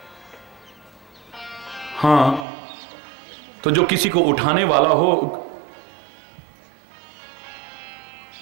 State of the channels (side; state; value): left; drops out; at 2.5 s